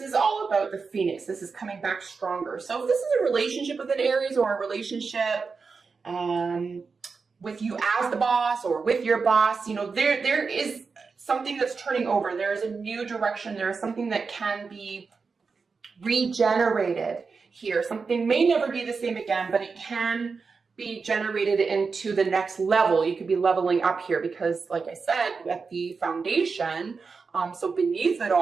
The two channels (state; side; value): quieter; left; 4.9 dB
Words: is all about the phoenix. This is coming back stronger. So if this is a relationship with an Aries, or a relationship with you as the boss or with your boss, you know, there is something that's turning over. There is a new direction. There is something that can be regenerated here. Something may never be the same again, but it can be generated into the next level. You could be leveling up here because, like I said, at the foundation, so beneath it